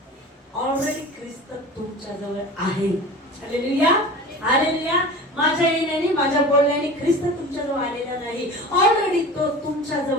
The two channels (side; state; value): both; normal; correlation 0.36